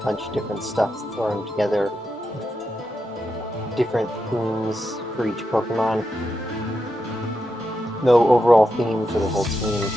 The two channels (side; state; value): both; normal; correlation 0.86